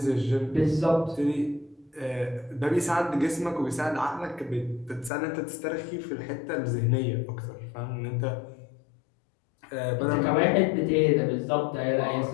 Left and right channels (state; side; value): drops out; right; at 5.1 s